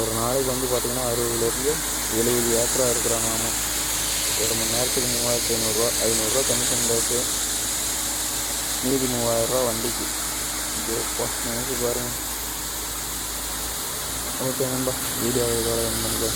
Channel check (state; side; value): identical; both; correlation 1.00